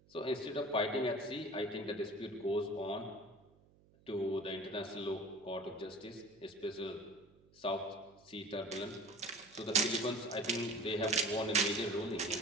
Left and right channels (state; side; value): noise; right; hum, 29 dB below the sound